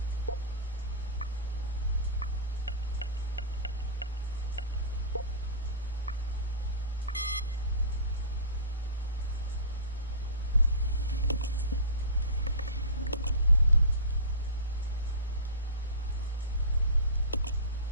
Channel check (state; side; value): inverted; both; correlation -0.31